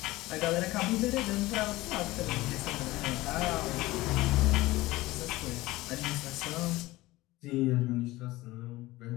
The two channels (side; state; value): right; quieter; 18.9 dB